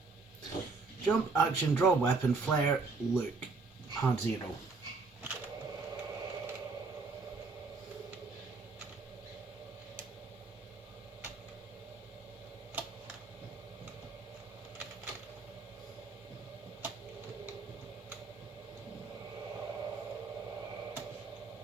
Jump, action, draw weapon, flare, look. Hard 0.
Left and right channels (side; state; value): left; quieter; 4.1 dB